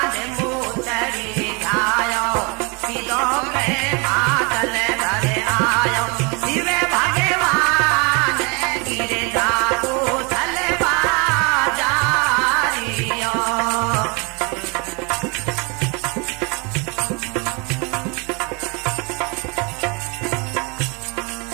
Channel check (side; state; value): left; quieter; 30.5 dB